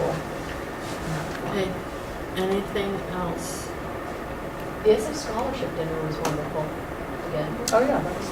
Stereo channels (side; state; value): both; identical; correlation 1.00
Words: Okay, anything else? The Essex Scholarship Dinner was wonderful. Again, Oh, yeah, that was